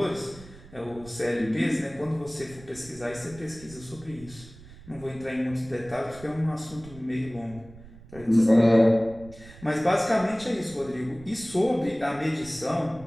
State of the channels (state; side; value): noise; right; rumble, 19 dB below the sound